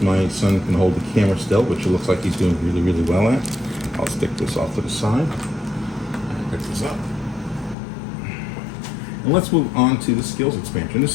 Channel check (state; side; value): drops out; right; at 7.8 s